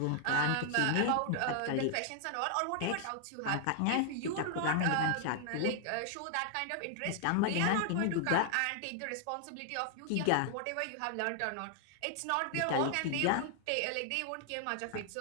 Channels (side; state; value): both; different; correlation 0.00